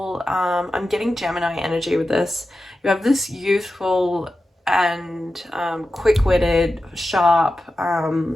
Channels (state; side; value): normal; both; correlation 0.92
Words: I'm getting Gemini energy with this. You have this youthful and quick-witted, sharp,